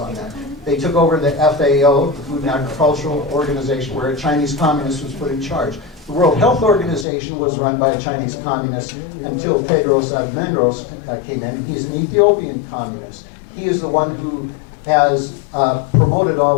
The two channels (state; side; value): drops out; right; at 7.1 s